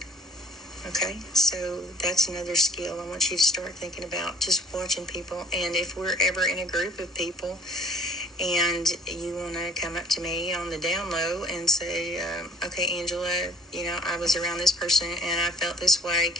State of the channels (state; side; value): normal; both; correlation 0.51